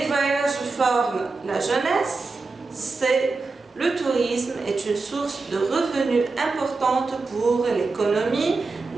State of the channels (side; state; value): left; quieter; 3.9 dB